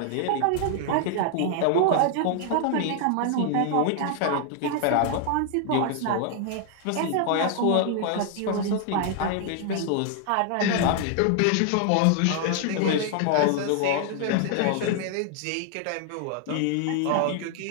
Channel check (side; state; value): both; different; correlation 0.00